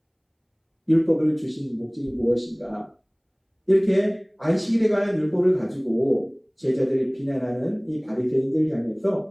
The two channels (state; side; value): identical; both; correlation 1.00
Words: 율법을 주신 목적이 무엇인가? 이렇게 안식일에 관한 율법을 가지고 제자들을 비난하는 이 바리새인들을